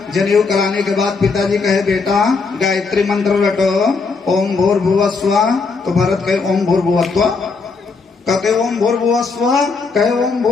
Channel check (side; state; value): right; quieter; 4.5 dB